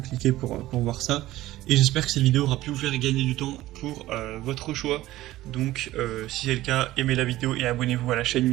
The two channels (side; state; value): left; quieter; 16.1 dB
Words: cliquez pour voir ça. Et j'espère que cette vidéo aura pu vous faire gagner du temps pour votre choix. Donc si c'est le cas, aimez la vidéo et abonnez-vous à la chaîne